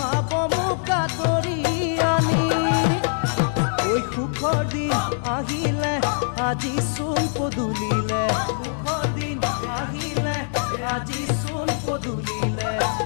মোক আদৰি আনি ঐ সুখৰ দিন আহিলে আজি চোন পদূলিলে সুখৰ দিন আহিলে আজি চোন পদূলিলে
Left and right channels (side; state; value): right; silent; 63 dB below the other